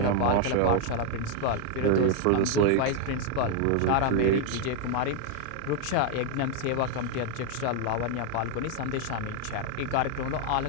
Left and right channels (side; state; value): both; different; correlation 0.01